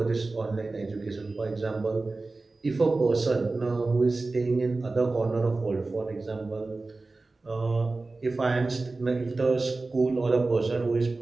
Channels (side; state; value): left; quieter; 3.4 dB